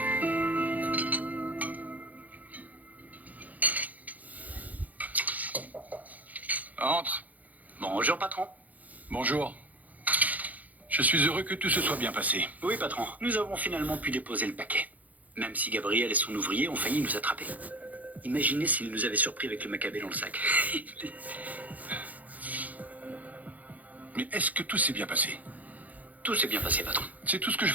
Entre. Bonjour, patron. Bonjour. Je suis heureux que tout se soit bien passé. Oui, patron. Nous avons finalement pu déposer le paquet. Même si Gabriel et son ouvrier ont failli nous attraper. Imaginez s'ils nous avaient surpris avec le macabé dans le sac. Mais est-ce que tout s'est bien passé? Tout s'est bien passé, patron. C'est tout ce que je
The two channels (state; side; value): late; left; 0.078 ms